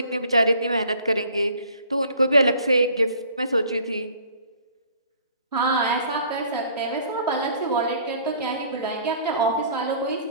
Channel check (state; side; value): inverted; both; correlation -0.54